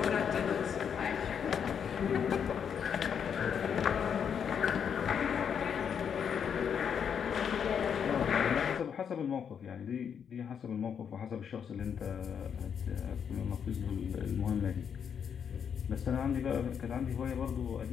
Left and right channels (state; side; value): quieter; right; 7.6 dB